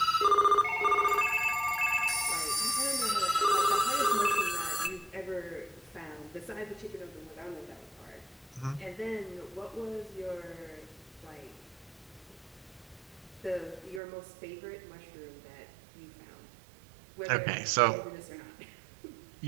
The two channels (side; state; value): left; drops out; at 14.0 s